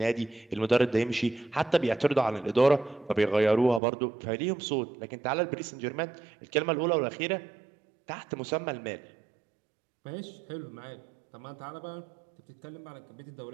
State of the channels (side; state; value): left; drops out; at 3.8 s